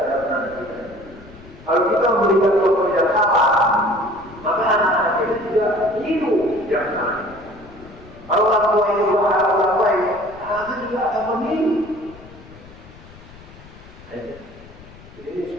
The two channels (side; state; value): left; noise; rumble, 20 dB below the sound